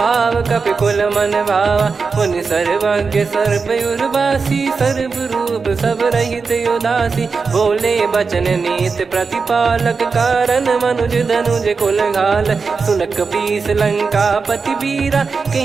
कपि कुल मन भावा। मुनि सर्वज्ञ सर्वयुर्वासी, सर्व रूप सब रहित उदासी। बोले बचन नीत प्रतिपालक, कारण मनुज धनुज कुल घाल। सुन कपीस लंका पति वीरा,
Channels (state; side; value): quieter; left; 4.8 dB